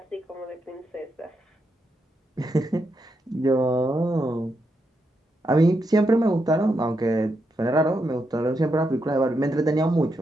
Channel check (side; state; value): both; normal; correlation 0.83